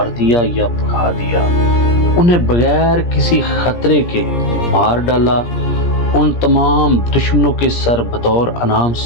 دیا یا بھگا دیا، انہیں بغیر کسی خطرے کے مار ڈالا۔ ان تمام دشمنوں کے سر بطور انعام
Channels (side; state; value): right; late; 17 ms